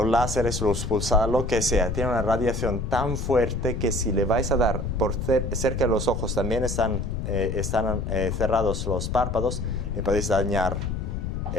pulsados, lo que sea, tienen una radiación tan fuerte que si le vais a dar por cerca de los ojos, también están cerrados los párpados, le podéis dañar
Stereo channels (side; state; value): left; noise; rumble, 3 dB below the sound